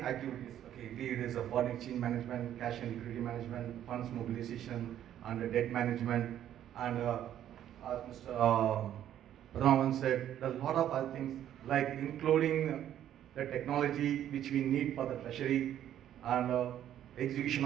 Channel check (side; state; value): left; quieter; 11.1 dB